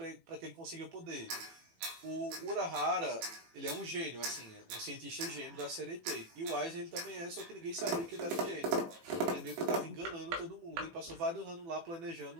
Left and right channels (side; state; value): left; late; 18 ms